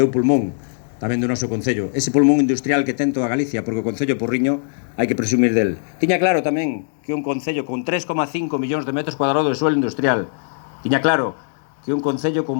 o pulmón tamén do noso Concello. Ese pulmón industrial que ten toda Galicia, porque o Concello Porriño hai que presumir del. Tiña claro tamén que un Concello con 3,5 millóns de metros cuadrados de suelo industrial. Tiña claro que un Concello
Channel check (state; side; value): silent; right; digital silence